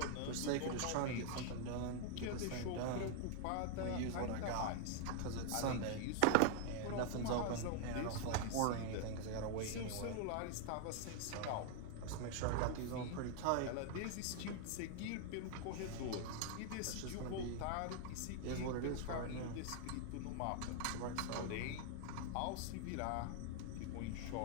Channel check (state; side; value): different; both; correlation 0.00